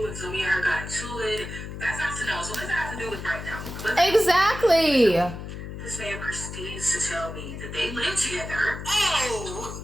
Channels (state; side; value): noise; left; hum, 9 dB below the sound